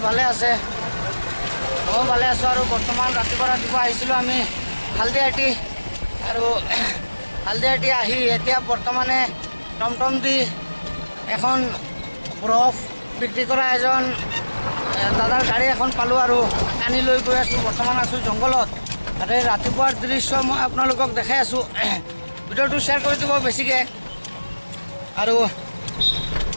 ভালে আছে মই ভালে আছো আৰু বৰ্তমান ৰাতিপুৱা আহিছিলো আমি হালদিয়াটি আৰু হালদিয়াটি আহি এতিয়া বৰ্তমানে টমটম দি এখন বৰফ বিক্ৰী কৰা এজন দাদাৰ গাড়ী এখন পালো আৰু আনি লৈ গৈ আছো বৰ্তমান আছো জংগলত আৰু ৰাতিপুৱাৰ দৃশ্য মই আপোনালোকক দেখাই আছো ভিডিঅ'টো শ্বেয়াৰ কৰি দিব বেছিকৈ আৰু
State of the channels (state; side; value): inverted; both; correlation -1.00